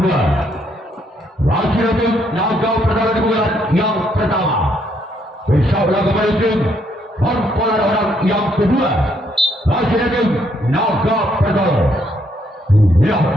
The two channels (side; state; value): both; normal; correlation 0.72